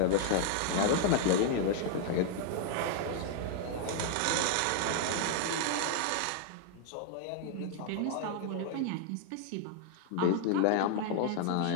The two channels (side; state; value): both; different; correlation 0.00